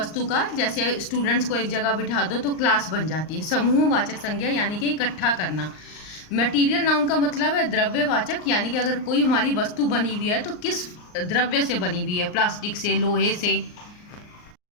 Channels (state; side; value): late; right; 39 ms